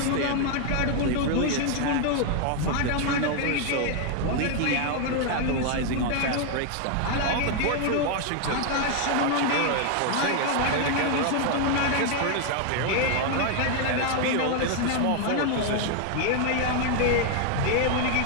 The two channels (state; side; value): different; both; correlation 0.00